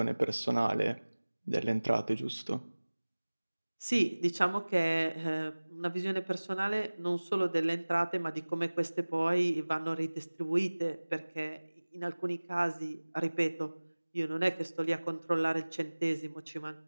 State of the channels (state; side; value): inverted; both; correlation -1.00